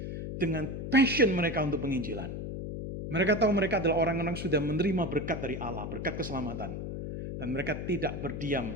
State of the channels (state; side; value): noise; left; hum, 6 dB below the sound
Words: dengan passion mereka untuk penginjilan. Mereka tahu mereka adalah orang-orang yang sudah menerima berkat dari Allah, berkat keselamatan. Dan mereka tidak